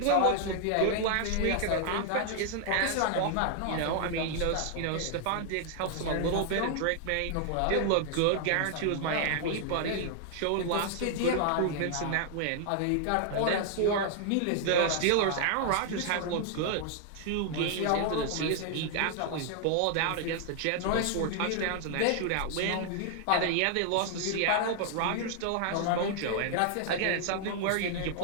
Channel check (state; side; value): different; both; correlation 0.00